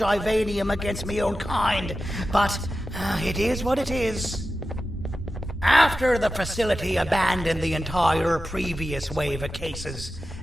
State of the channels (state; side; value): normal; both; correlation 0.93